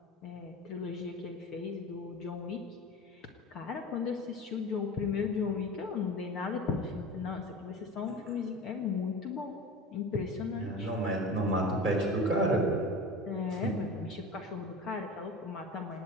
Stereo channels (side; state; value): both; normal; correlation 0.33